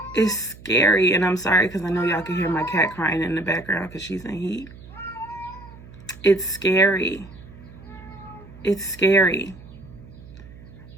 is scary. And I'm sorry because I know y'all can hear my cat crying in the background because she's in heat. It's scary. It's scary.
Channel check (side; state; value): right; noise; hum, 19 dB below the sound